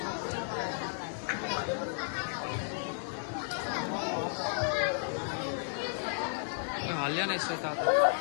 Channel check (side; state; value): right; silent; digital silence